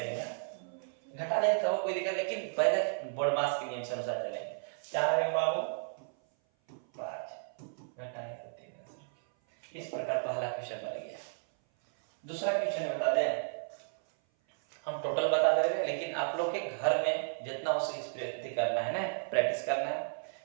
ना, घटा देंगे तो कोई दिक्कत, लेकिन पहले बोर्ड मास के नियम से अनुसार चलेंगे। 4 में बाबू 5 घटाएंगे तो 3 आंसर। इस प्रकार पहला क्वेश्चन बन गया। दूसरा क्वेश्चन बता दें, हम टोटल बता दे रहे हैं, लेकिन आप लोग के घर में जितना हो सके करना है ना, प्रैक्टिस करना है।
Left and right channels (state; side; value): silent; left; 55 dB below the other